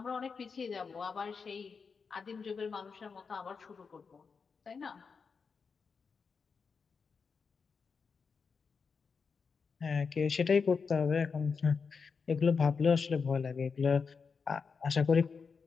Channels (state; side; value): quieter; right; 5.4 dB